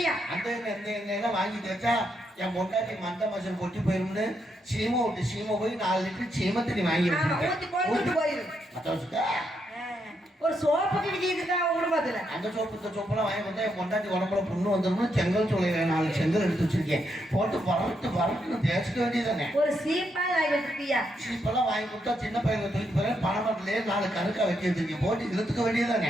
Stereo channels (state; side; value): normal; both; correlation 0.79